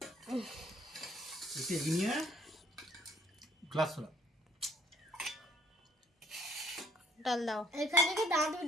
ডাল দাও। এখান থেকে দাঁত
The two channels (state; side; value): normal; both; correlation 0.61